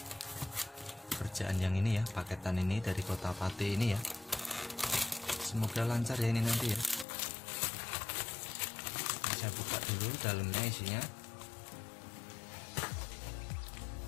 pekerjaan yang ini ya, paketan ini dari Kota Pati ini ya. Semoga lancar ya ini nanti ya. Saya buka dulu dalamnya isinya.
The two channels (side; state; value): right; drops out; at 7.1 s